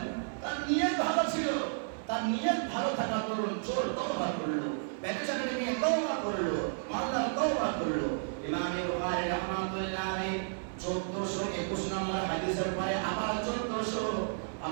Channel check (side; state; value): left; silent; digital silence